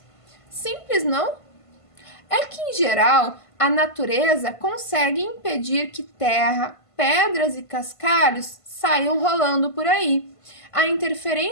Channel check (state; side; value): late; right; 1.5 ms